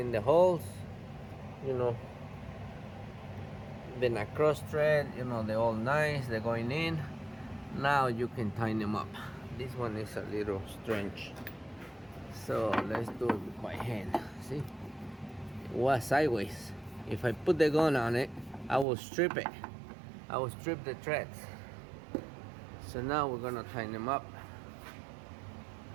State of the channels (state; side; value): drops out; left; at 18.9 s